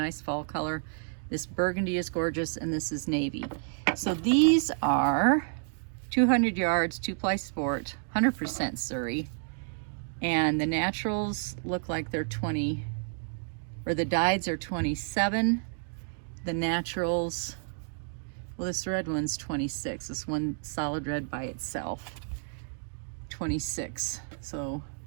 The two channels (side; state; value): left; silent; digital silence